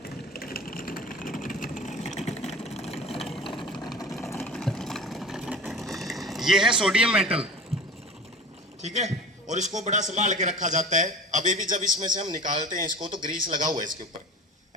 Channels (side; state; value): both; normal; correlation 0.36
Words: ये है सोडियम मेटल, ठीक है, और इसको बड़ा संभाल के रखा जाता है। अभी भी जब इसमें से हम निकालते हैं इसको तो ग्रीस लगा हुआ है इसके ऊपर,